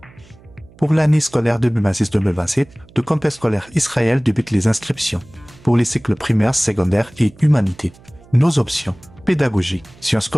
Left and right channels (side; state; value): right; noise; hum, 25 dB below the sound